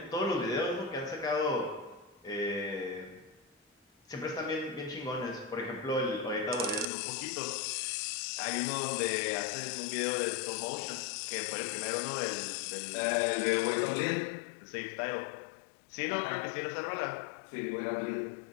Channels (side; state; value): right; drops out; at 6.9 s